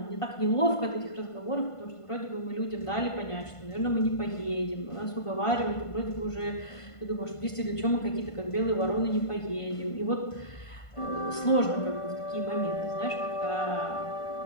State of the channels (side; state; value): right; late; 1.5 ms